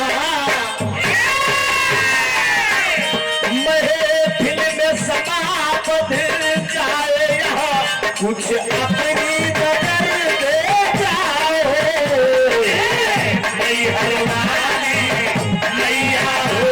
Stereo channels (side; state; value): both; identical; correlation 1.00